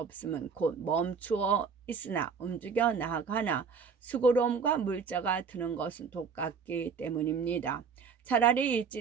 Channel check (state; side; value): quieter; left; 5.9 dB